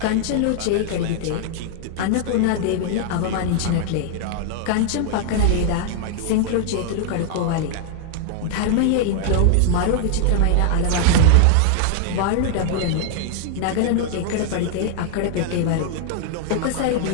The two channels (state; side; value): different; both; correlation 0.00